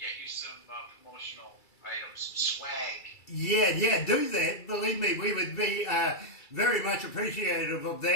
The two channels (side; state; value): right; late; 2.3 ms